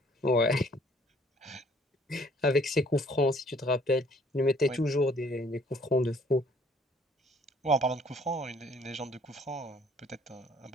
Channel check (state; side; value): normal; both; correlation 0.59